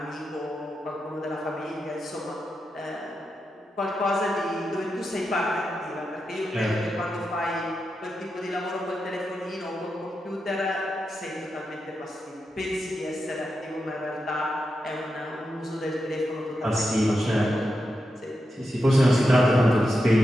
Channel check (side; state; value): both; normal; correlation 0.88